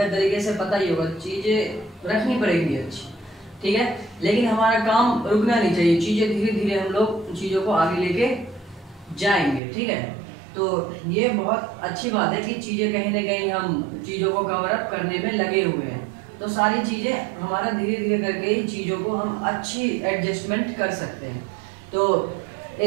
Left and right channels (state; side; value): drops out; left; at 9.6 s